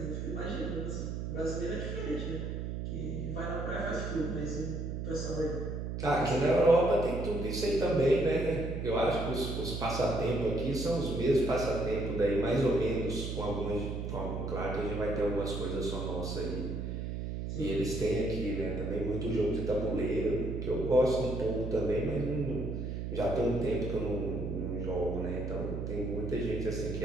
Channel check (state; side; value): noise; right; hum, 4 dB below the sound